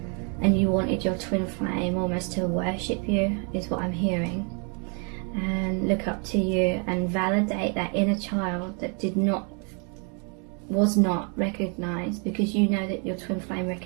and you wanted your twin flame almost to worship you, is what I'm hearing, and look up to you and validate that inner child that was not recognized, because you know that your twin flame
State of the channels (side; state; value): left; quieter; 37.3 dB